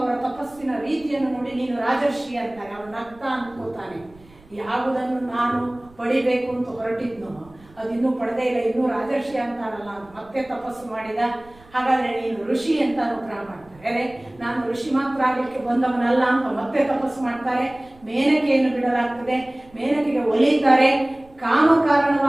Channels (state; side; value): noise; right; rumble, 26 dB below the sound